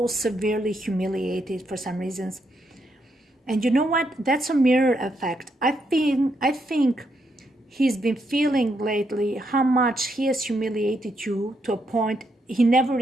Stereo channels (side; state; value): both; normal; correlation 0.78